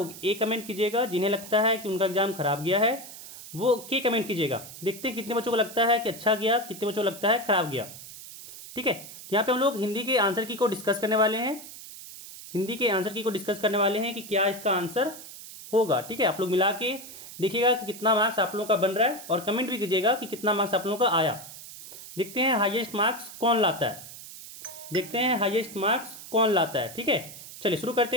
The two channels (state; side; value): noise; right; hiss, 14 dB below the sound